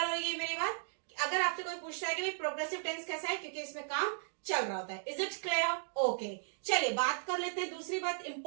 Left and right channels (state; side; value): silent; left; digital silence